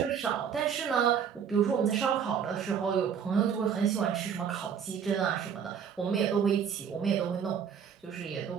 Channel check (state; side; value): quieter; left; 7.6 dB